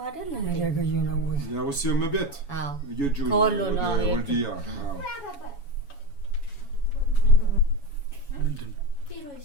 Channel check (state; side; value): late; right; 7.1 ms